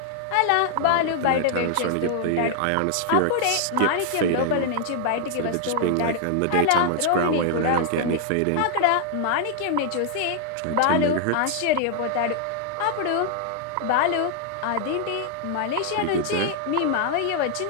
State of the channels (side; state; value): both; different; correlation 0.00